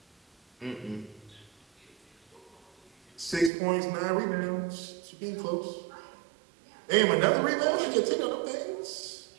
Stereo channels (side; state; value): left; drops out; at 3.5 s